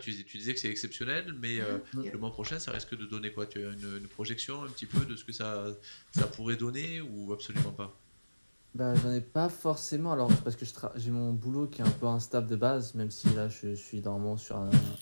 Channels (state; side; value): inverted; both; correlation -1.00